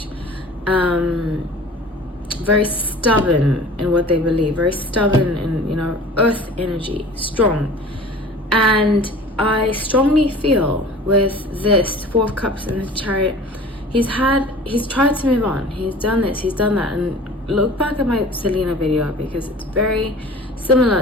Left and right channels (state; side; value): normal; both; correlation 0.43